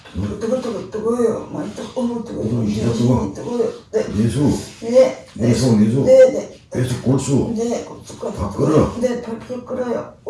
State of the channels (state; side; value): identical; both; correlation 1.00